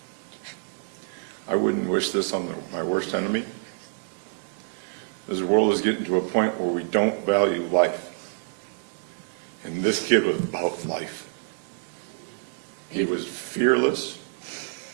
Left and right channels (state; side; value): silent; left; digital silence